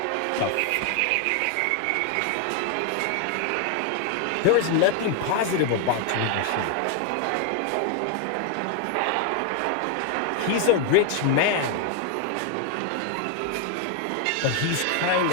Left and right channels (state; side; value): different; both; correlation 0.00